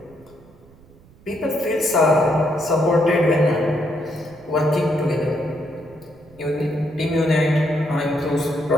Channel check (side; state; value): right; noise; rumble, 26 dB below the sound